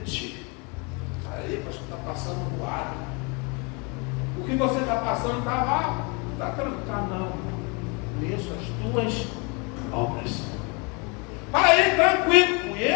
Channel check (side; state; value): right; quieter; 31.5 dB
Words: Aí, pastor, está passando voado. O que você está passando está tranquilo. Não. Conheço as tuas obras. Para aí, tranquilo.